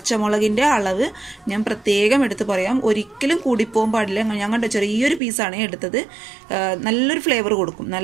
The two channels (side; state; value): left; drops out; at 5.2 s